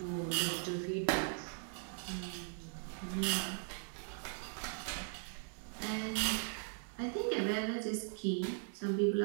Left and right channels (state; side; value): silent; left; 52 dB below the other